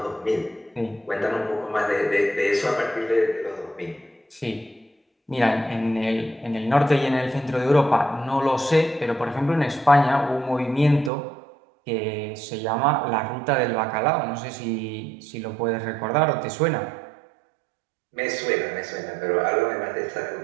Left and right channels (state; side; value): drops out; left; at 11.1 s